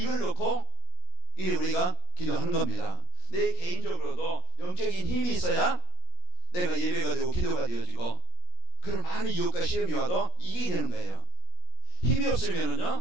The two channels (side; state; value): right; late; 17 ms